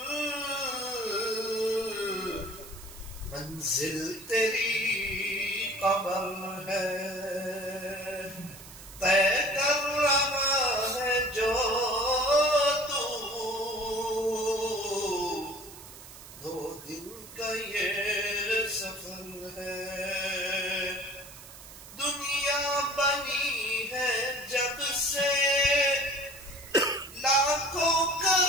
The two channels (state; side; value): noise; right; hiss, 17 dB below the sound